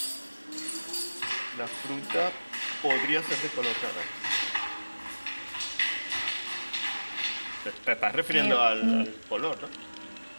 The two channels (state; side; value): inverted; both; correlation -1.00